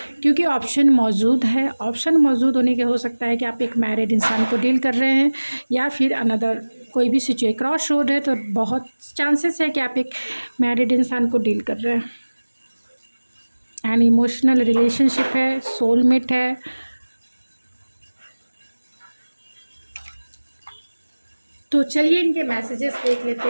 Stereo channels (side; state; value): both; inverted; correlation -1.00